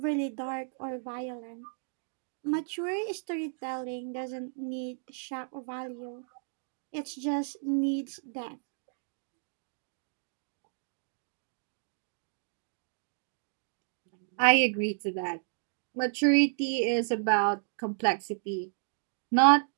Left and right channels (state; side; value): silent; left; digital silence